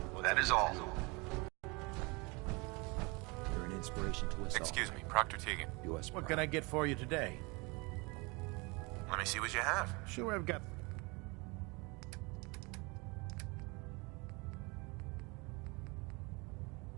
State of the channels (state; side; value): quieter; left; 27.7 dB